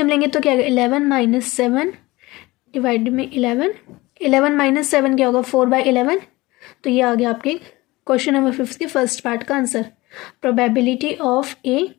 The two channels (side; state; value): right; quieter; 20.6 dB